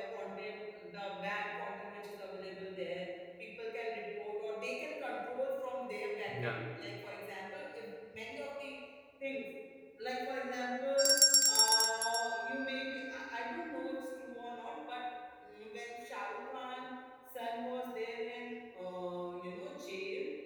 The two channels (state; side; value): identical; both; correlation 1.00